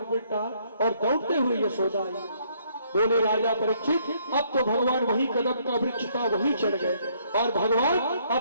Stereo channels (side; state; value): both; inverted; correlation -0.67